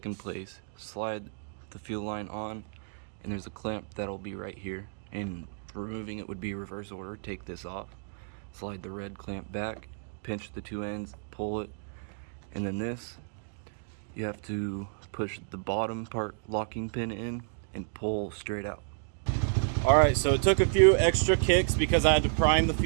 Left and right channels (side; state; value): left; silent; digital silence